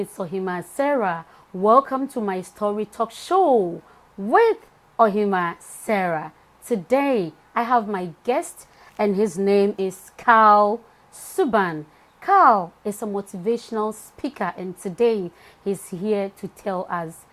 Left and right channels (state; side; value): identical; both; correlation 1.00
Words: Ohemaa Sarah. Welcome to my story talk show with Ohemaa Sarah. Today, I have my guest, and his name is Karl Subban. Karl is a motivational speaker, and today he's here to tell us